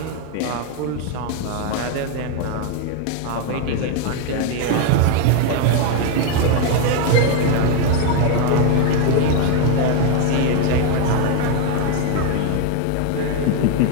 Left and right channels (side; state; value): both; different; correlation 0.01